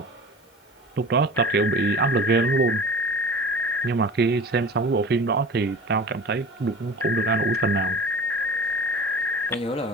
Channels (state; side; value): normal; both; correlation 0.36